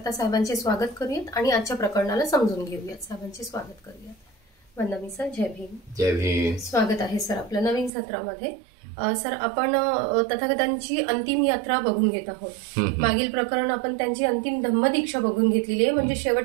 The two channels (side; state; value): left; drops out; at 7.9 s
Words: साहेबांचे स्वागत करूयात आणि आजच्या प्रकरणाला समजून घेऊयात. साहेबांचे स्वागत करूयात. वंदना सर, जय भीम. जय भीम. स्वागत आहे सर आपल्या नवीन सत्रामध्ये. सर, आपण तथागतांची अंतिम यात्रा बघून घेत आहोत. मागील प्रकरण आपण त्यांची अंतिम धम्मदीक्षा बघून घेतलेली आहे, म्हणजे